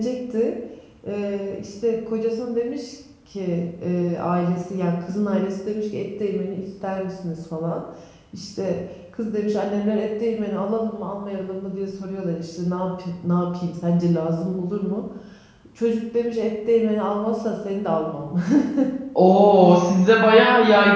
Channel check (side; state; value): both; identical; correlation 1.00